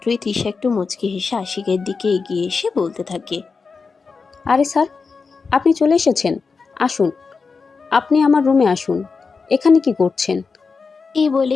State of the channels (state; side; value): quieter; right; 4.8 dB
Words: তিশা একটু মুচকি হেসে আশিকের দিকে এগিয়ে এসে বলতে থাকে, আরে স্যার, আপনি চলে এসেছেন। আসুন, আপনি আমার রুমে আসুন। এখানে কি করছেন? এই বলে